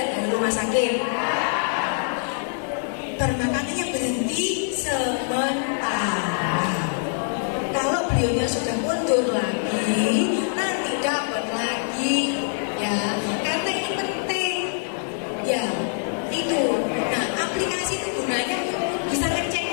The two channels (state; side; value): silent; right; digital silence